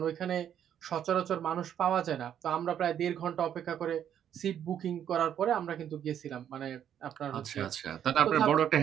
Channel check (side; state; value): left; quieter; 9.6 dB